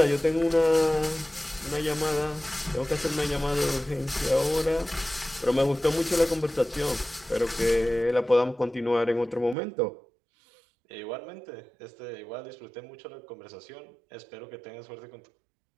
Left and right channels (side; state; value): left; drops out; at 9.6 s